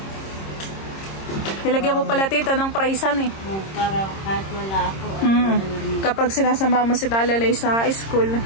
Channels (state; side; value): late; right; 26 ms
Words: Nilagyan mo pala tita ng pricean eh. Para kahit wala ako. Kapag sinasama mo si Talalay sa school.